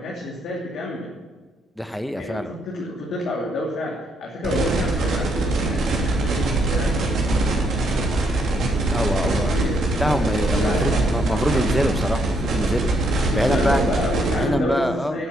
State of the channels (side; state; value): both; normal; correlation 0.74